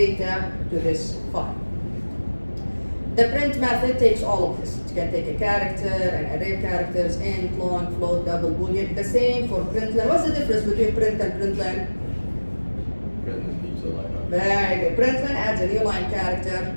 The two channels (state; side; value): inverted; both; correlation -1.00